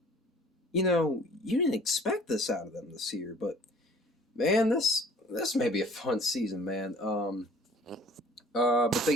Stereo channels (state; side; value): normal; both; correlation 0.52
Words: you know, you didn't expect this out of them this year. But man, this may be a fun season, man. But